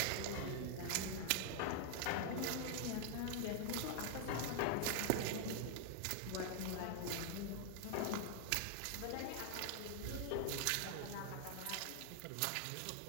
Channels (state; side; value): different; both; correlation 0.00